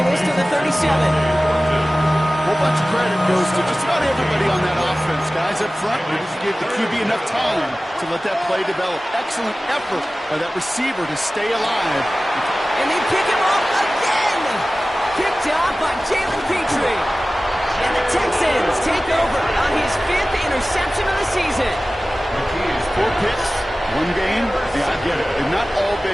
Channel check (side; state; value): both; normal; correlation 0.97